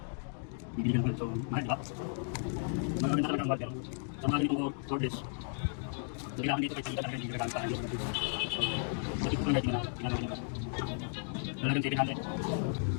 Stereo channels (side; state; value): right; silent; 55 dB below the other